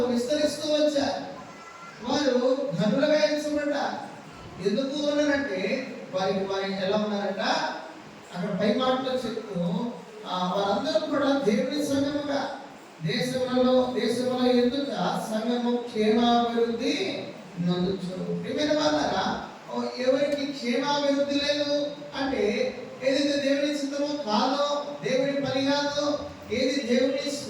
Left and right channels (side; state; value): both; identical; correlation 1.00